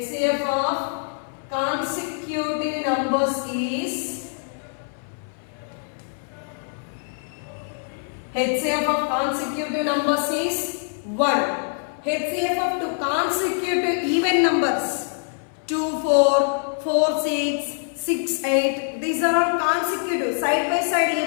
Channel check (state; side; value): silent; right; 58 dB below the other